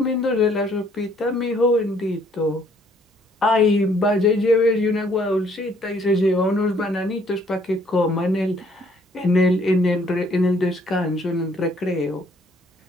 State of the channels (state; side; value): normal; both; correlation 0.63